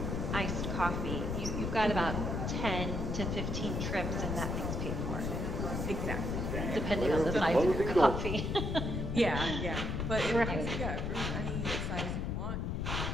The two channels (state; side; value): noise; left; rumble, 1 dB below the sound